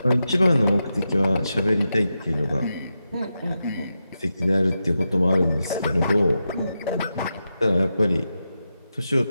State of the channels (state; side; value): inverted; both; correlation -0.89